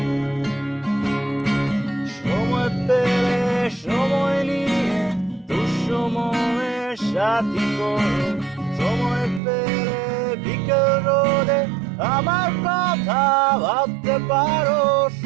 সময় পেলে সময় নিয়ে দুঃসময়ের সাথী করো। সময় পেলে বিকেল রোদে আমার কথা ভাবতে পারো।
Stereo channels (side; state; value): left; drops out; at 9.4 s